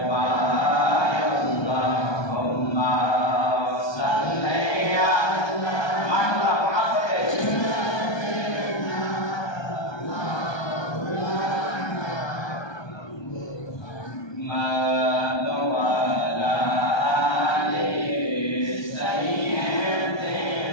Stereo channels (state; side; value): late; right; 1.2 ms